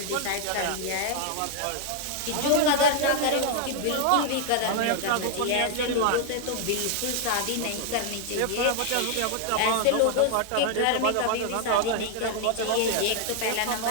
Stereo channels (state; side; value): different; both; correlation 0.00